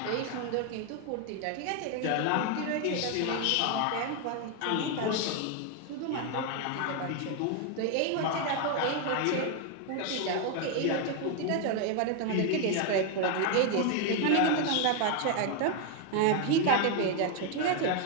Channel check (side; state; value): both; different; correlation 0.01